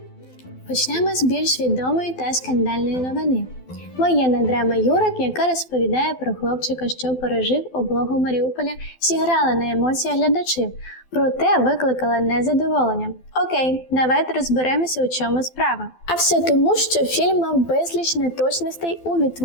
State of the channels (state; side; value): late; right; 12 ms